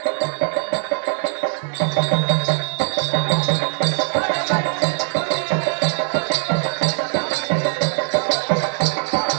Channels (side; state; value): left; silent; digital silence